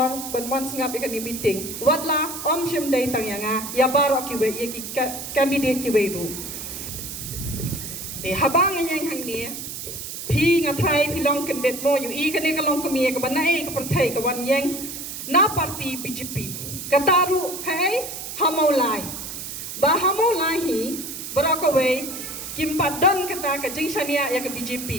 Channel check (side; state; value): right; noise; hiss, 8 dB below the sound